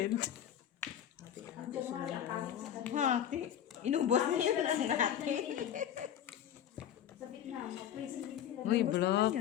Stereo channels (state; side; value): quieter; right; 10.3 dB